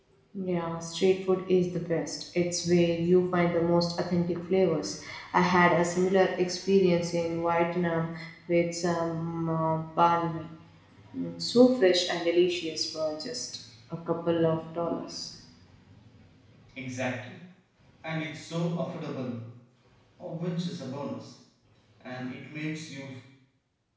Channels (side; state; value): both; identical; correlation 1.00